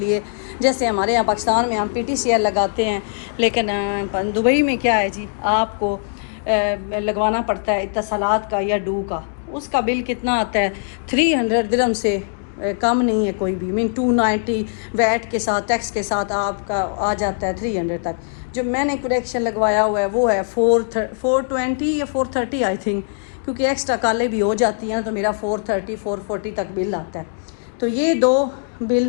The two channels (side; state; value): right; silent; digital silence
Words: जैसे हमारे यहाँ पाकिस्तान में हम PTCL लगाते हैं, लेकिन दुबई में क्या है जी, आपको लगवाना पड़ता है इत्तसालात का या डू का। उसका बिल कितना आता है, 300 दिरहम से कम नहीं है कोई भी। 290 वैट के साथ, टैक्स के साथ आपका आ जाता है 300 तक। जो मैंने कनेक्शन लगवाया हुआ है वो है 420 या 430 आई थिंक, क्योंकि एक्स्ट्रा कालें भी हो जाती हैं, तो मेरा 430 440 तक बिल आता है। तो ये 2